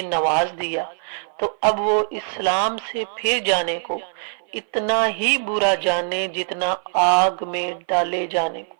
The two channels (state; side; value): silent; left; 57 dB below the other